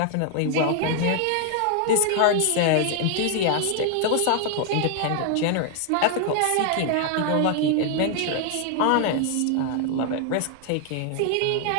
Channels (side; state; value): both; different; correlation 0.00